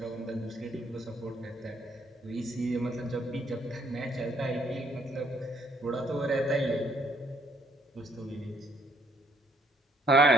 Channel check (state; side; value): normal; both; correlation 0.66